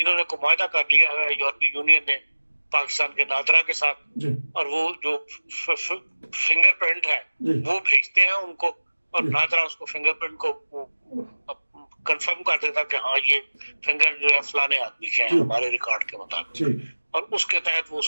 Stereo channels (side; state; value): both; inverted; correlation -1.00